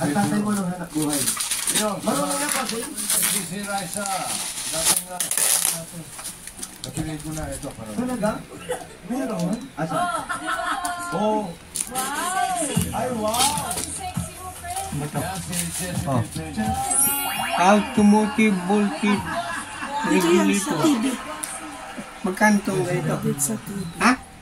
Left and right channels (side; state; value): both; identical; correlation 1.00